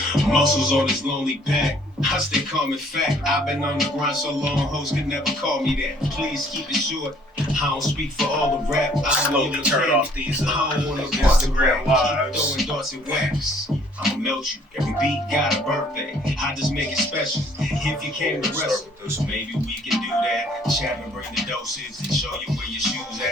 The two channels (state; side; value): normal; both; correlation 0.59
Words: Muscles on his lonely back. I stay calm and fact. I've been on the grind so long, hoes could never call me that. Please keep it short. I don't speak for all the rap. I Slowly turn off these I don't wanna Instagram lives. Keep throwing darts and wax. I'ma melt you. Every beat got a birthday. I just make it special. If you came to wrestle, so maybe we can do that. Chat and bring the doses and show you where your shoes